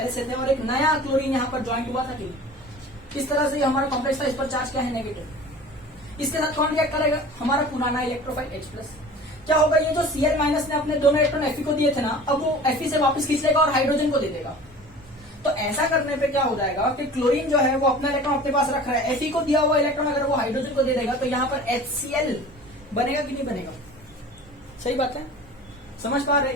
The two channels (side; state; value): both; normal; correlation 0.41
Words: से थे, और एक नया क्लोरीन यहाँ पर ज्वाइंट हुआ था कि इस तरह से हमारा कॉम्प्लेक्स था, इस पर चार्ज क्या है, नेगेटिव। इसके साथ कौन रिएक्ट करेगा, हमारा पुराना इलेक्ट्रोफाइल H+। क्या होगा, ये जो Cl- ने अपने दोनों इलेक्ट्रॉन Fe को दिए थे ना, अब वो Fe से वापस खींच लेगा और हाइड्रोजन को दे देगा। तो ऐसा करने पे क्या हो जाएगा कि क्लोरीन जो है वो अपना इलेक्ट्रॉन अपने पास रख रहा है, Fe को दिया हुआ इलेक्ट्रॉन अगर वो हाइड्रोजन को दे देगा तो यहाँ पर HCl बनेगा कि नहीं बनेगा। सही बात है, समझ पा रहे